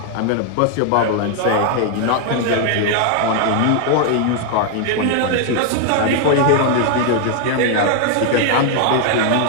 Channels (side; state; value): both; different; correlation 0.00